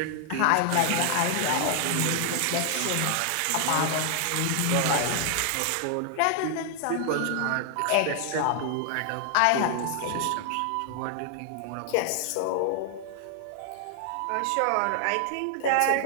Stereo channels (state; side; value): different; both; correlation 0.00